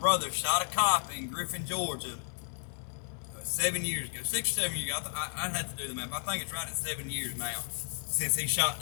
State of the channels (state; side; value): silent; right; 56 dB below the other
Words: shot a cop in Griffin, Georgia 7 years ago. 6 or 7 years ago. I'd have to do the math. I think it's right at 7 years now since he shot